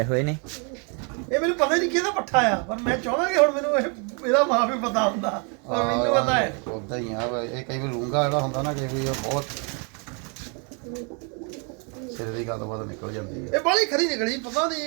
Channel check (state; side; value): quieter; left; 35.8 dB